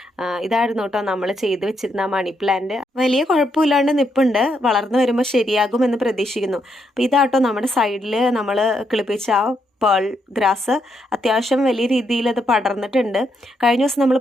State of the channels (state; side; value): normal; both; correlation 0.78